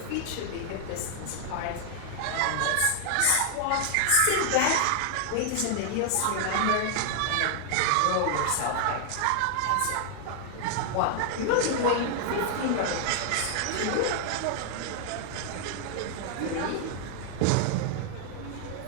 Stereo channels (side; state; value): both; different; correlation 0.00